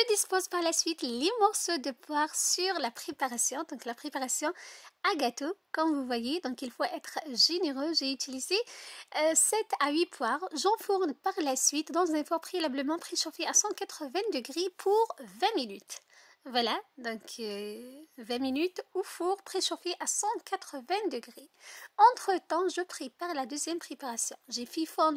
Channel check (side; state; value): both; identical; correlation 1.00